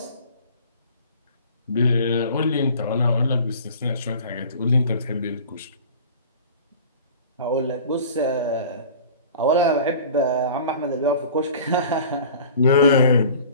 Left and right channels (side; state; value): both; inverted; correlation -0.43